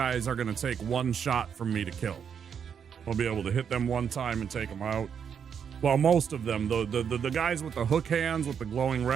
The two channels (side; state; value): left; quieter; 7.5 dB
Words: are going to take one shot from me to kill. I'll be able to hit them one time and take them out. Well, most of them, the guys with the hook hands, with the glowing